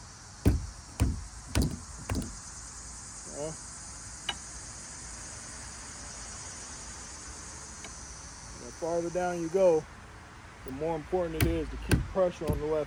Okay. The farther down you go, the more important it is to keep pressure on the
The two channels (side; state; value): both; identical; correlation 1.00